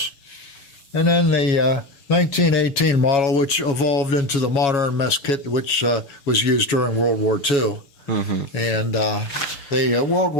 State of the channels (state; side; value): late; right; 7.2 ms